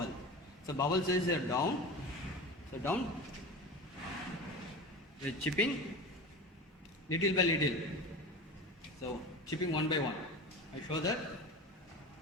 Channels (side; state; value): both; normal; correlation 0.30